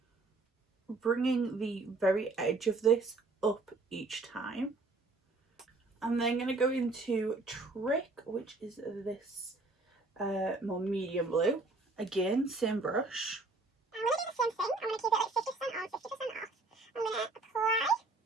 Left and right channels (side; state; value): left; quieter; 3.4 dB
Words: bringing the very edge of this up each time. I'm then going to go into Trick, which is this more medium blue. Again, same brush. I'm going to do the same thing. I'm going to keep it like 50% on, 50% off. I'm going to apply